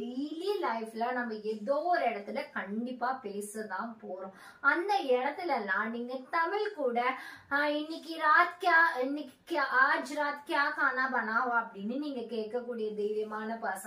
லைஃப்ல நம்ம ஏதோ ஒரு இடத்துல கண்டிப்பா பேசதான் போறோம். அந்த இடத்துலலாம் நீங்க தமிழ் கூட இன்னைக்கு ராத் கியா, இன்னைக்கு ஆஜ் ராத் கியா கானா பனாவா அப்படின்னு நீங்க கேட்கக்கூடிய தைரியமான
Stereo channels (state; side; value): identical; both; correlation 1.00